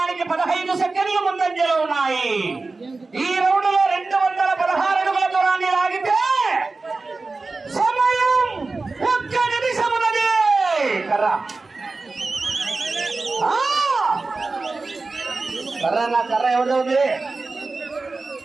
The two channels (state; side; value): quieter; left; 3.7 dB